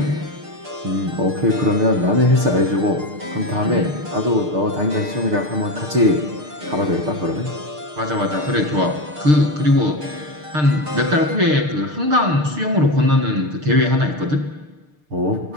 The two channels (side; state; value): left; late; 6.6 ms